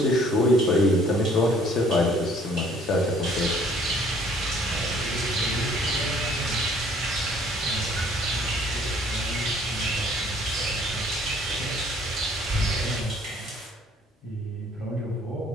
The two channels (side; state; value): both; normal; correlation 0.58